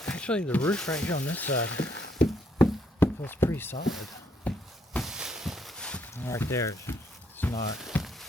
actually the roof right here on this side feels pretty solid. Right there, it's not.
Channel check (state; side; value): normal; both; correlation 0.71